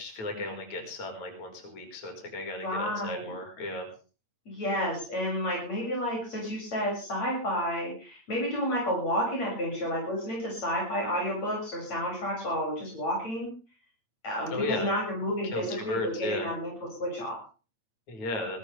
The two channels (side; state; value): right; late; 8.8 ms